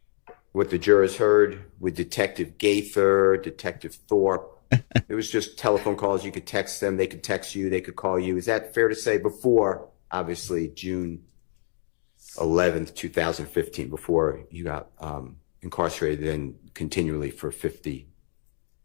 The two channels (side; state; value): right; silent; 56 dB below the other